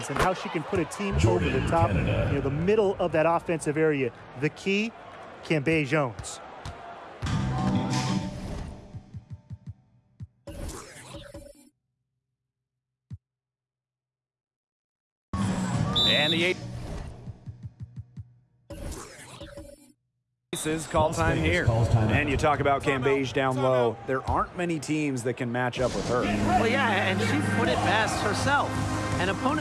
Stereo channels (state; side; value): identical; both; correlation 1.00